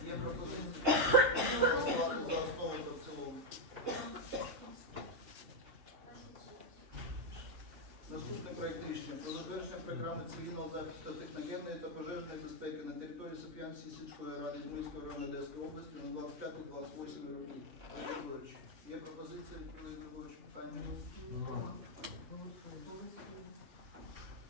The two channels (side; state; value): left; late; 3.6 ms